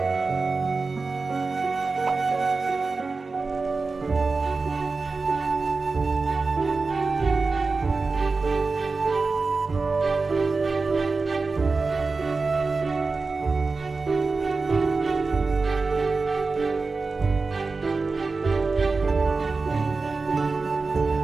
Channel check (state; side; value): quieter; left; 4.0 dB